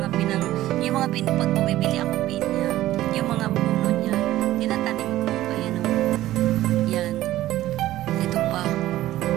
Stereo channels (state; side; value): quieter; left; 14.8 dB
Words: pag bumibili ako pinya, yung mga puno niya, tinatanim ko. Ayan o. Yan. Ito pa.